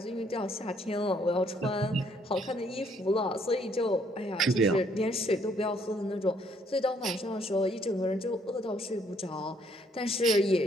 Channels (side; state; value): both; normal; correlation 0.67